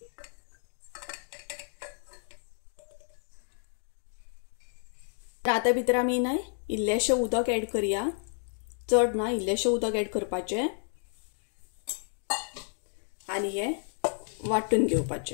आता भितर आमी न्हय इल्लेशें उदक ऍड करया, चड ना, इल्लेशें उदक ऍड करपाचें आणि हे वाटून घेवपाचें।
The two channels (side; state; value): right; silent; 57 dB below the other